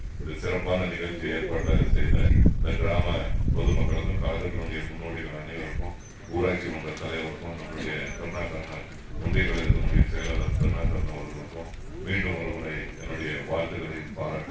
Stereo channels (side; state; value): both; identical; correlation 1.00